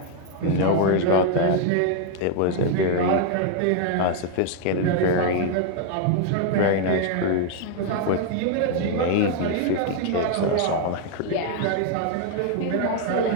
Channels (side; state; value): both; different; correlation 0.00